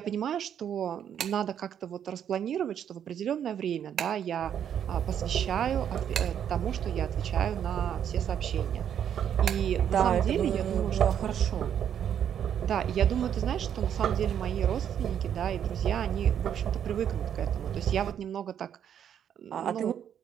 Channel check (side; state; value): left; quieter; 9.1 dB